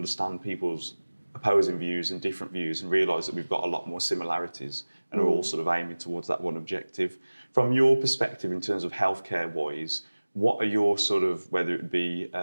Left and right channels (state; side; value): inverted; both; correlation -1.00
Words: people's opposing views and different views and realise that we've got a lot more similarities and are all sort of aiming towards that one objective. From your perspective, in terms of healthcare-wise, what are your sort of, whether it be